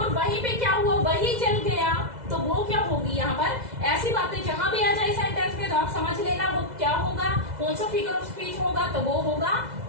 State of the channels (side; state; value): left; late; 2.0 ms